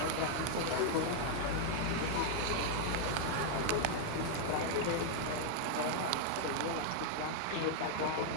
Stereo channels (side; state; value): both; different; correlation -0.01